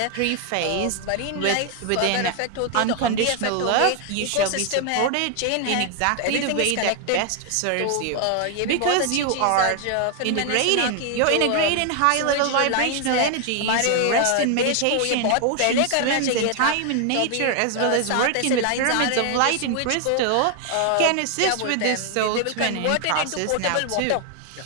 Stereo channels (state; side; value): different; both; correlation 0.00